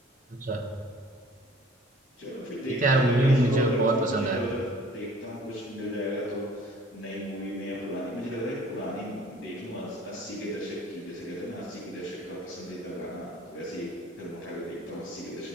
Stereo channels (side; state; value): both; normal; correlation 0.52